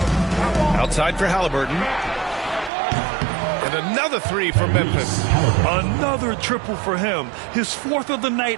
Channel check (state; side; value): drops out; left; at 2.7 s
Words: Outside for Halliburton. And another 3 for Memphis. Another triple for him. His 4th of the